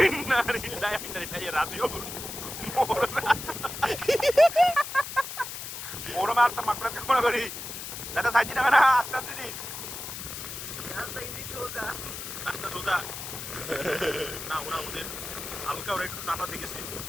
না রিলাই রাজিও ওরা মারতে মাকড়া কামড়া করি দাদা সাইড দিনা না আস্তে আস্তে দিস রাস্তা সোজা না ওরা ওদের হালকা ওরা একটু নাটা শিখেছে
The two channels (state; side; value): noise; left; hiss, 8 dB below the sound